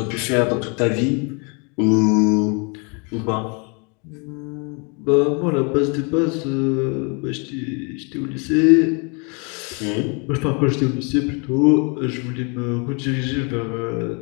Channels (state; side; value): quieter; right; 33.7 dB